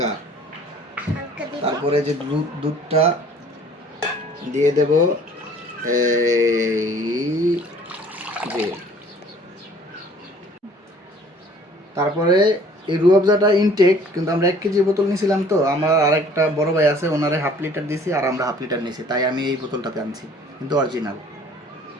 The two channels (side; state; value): both; normal; correlation 0.53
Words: তারপরে যে দুধটা দিয়ে দেব এই যে, তারপরে এই রুয়াবজাটা ইনটেক, কিন্তু আমরা 1 কেজি বোতল নিয়েছিলাম, তো আমার আরেকটা বড় ভাই আছে, ওনারে হাফ লিটার দিছি আর আমরা হাফ লিটার নিয়েছি, তাই আমি এই বোতলটাতে আনছি, কিন্তু অরিজিনাল।